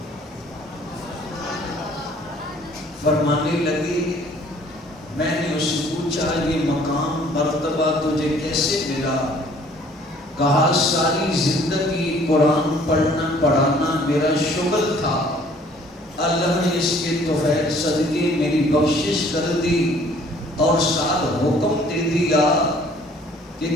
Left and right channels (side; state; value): both; normal; correlation 0.57